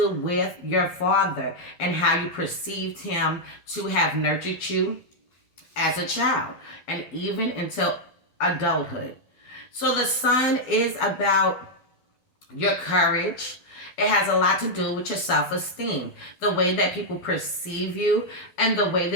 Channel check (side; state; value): right; late; 12 ms